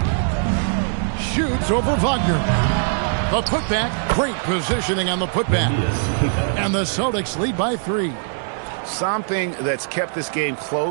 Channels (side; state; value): left; silent; digital silence